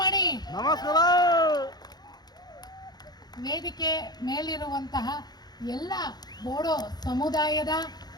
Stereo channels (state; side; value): late; right; 0.20 ms